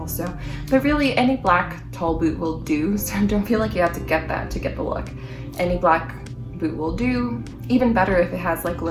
But really, any black tall boot will do, so don't feel like you have to get that to get the look. Any black boot will do. Even better if it has like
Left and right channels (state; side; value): identical; both; correlation 1.00